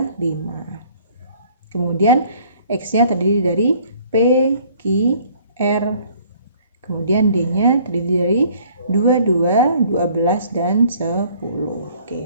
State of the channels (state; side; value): inverted; both; correlation -0.57